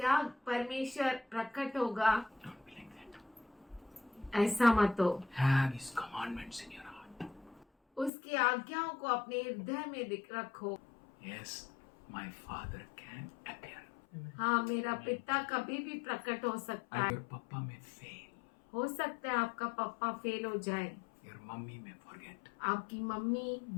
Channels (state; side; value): drops out; right; at 8.1 s